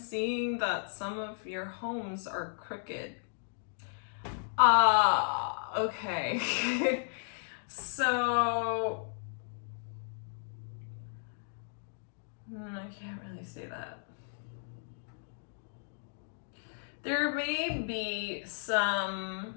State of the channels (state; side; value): silent; right; digital silence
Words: that some of your homes are crooked. Okay. So, I can't really say that. There may be some